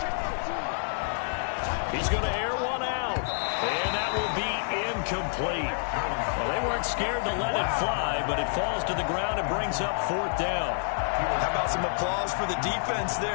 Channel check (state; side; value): silent; right; 59 dB below the other